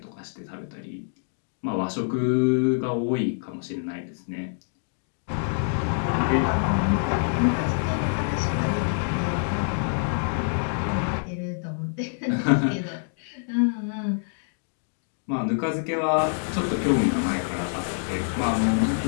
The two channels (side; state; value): right; silent; digital silence